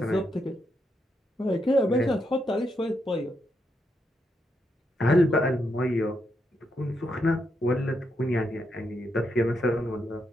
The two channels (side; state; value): both; normal; correlation 0.81